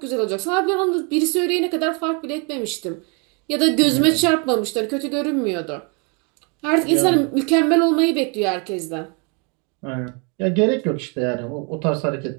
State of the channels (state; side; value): quieter; left; 33.6 dB